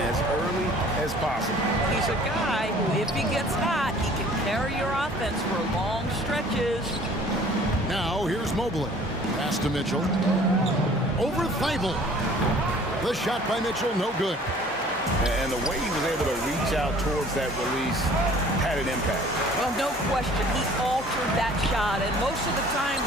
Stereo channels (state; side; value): normal; both; correlation 0.51